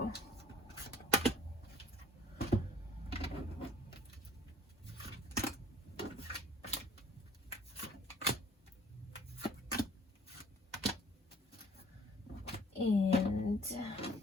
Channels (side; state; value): both; normal; correlation 0.55